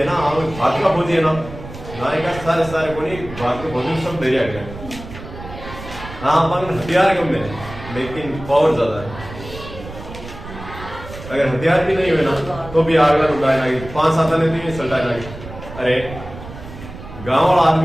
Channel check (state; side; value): noise; right; rumble, 13 dB below the sound